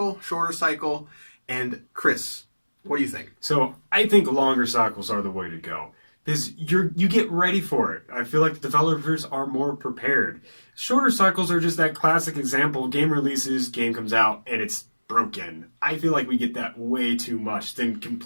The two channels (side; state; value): both; inverted; correlation -1.00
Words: shorter cycle? And Chris, what do you think? So I think longer cycles are the way to go. Because you get ready for it. I feel like the developers are more prepared. Shorter cycles are just that classic example. Game releases, game comes out, and it's broken. I feel like we get that way too much than